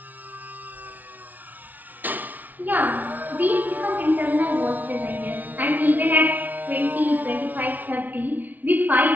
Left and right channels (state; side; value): late; left; 0.079 ms